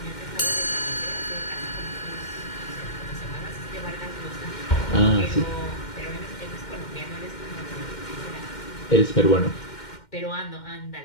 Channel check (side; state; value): right; late; 2.1 ms